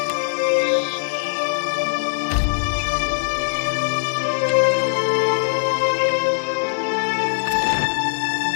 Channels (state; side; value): silent; right; digital silence